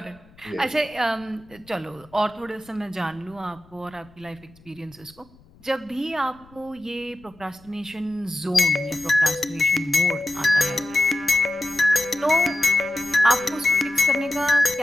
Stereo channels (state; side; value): noise; left; rumble, 27 dB below the sound